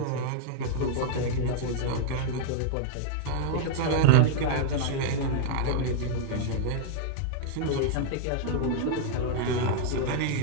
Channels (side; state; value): both; different; correlation -0.01